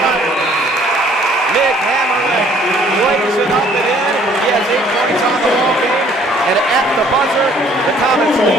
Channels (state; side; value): normal; both; correlation 0.59